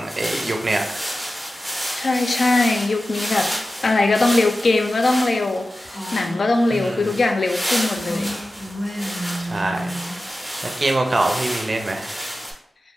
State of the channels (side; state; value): both; normal; correlation 0.94